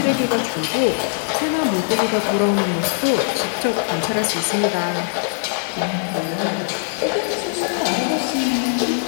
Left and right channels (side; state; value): right; silent; 56 dB below the other